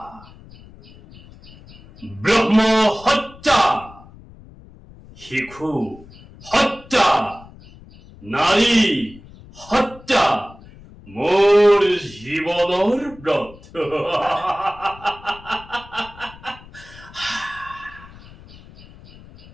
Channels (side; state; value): left; noise; rumble, 21 dB below the sound